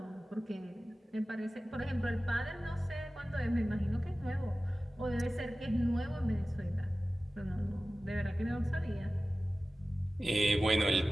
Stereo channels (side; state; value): both; normal; correlation 0.96